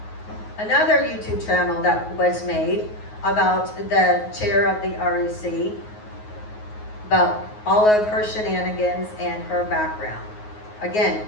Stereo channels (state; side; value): late; right; 9.5 ms